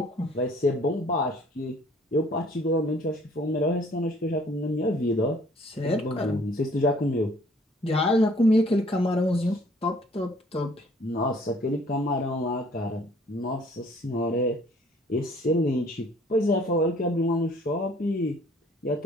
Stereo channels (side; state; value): both; normal; correlation 0.57